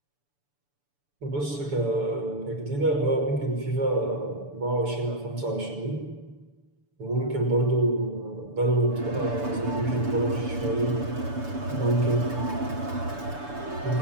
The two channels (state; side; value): late; left; 6.9 ms